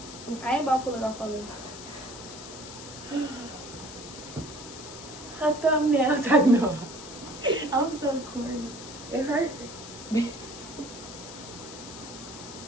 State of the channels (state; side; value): noise; left; hiss, 13 dB below the sound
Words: I ain't about to pull it off of you. Her thumbnails, I know. I'm so corny. It hurt.